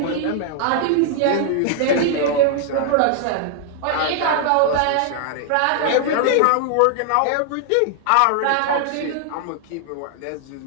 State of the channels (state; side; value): different; both; correlation 0.00